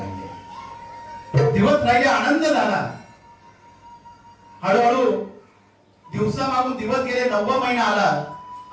राहिले, आनंद झाला. हळूहळू दिवसामागून दिवस गेले, 9वा महिना आला.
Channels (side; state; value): both; identical; correlation 1.00